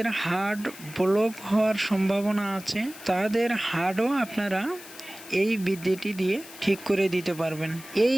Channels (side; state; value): left; noise; hiss, 16 dB below the sound